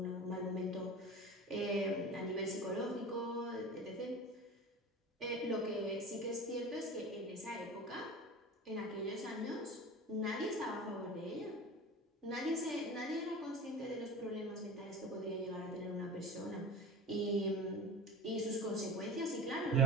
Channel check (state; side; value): normal; both; correlation 0.33